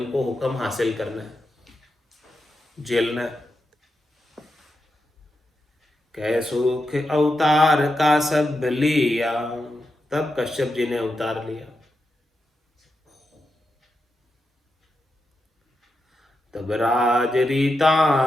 हुक्म हासिल करना है, झेलना है। कह सुख अवतार का सब लिया, तब कश्यप जी ने अवतार लिया। तब राज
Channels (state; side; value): normal; both; correlation 0.87